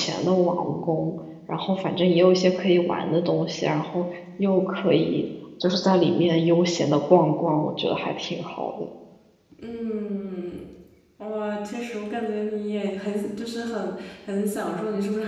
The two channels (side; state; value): both; identical; correlation 1.00